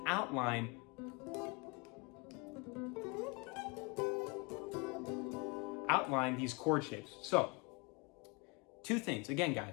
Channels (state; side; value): quieter; right; 30.1 dB